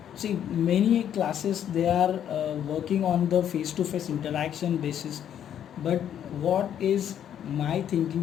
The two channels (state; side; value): quieter; right; 9.8 dB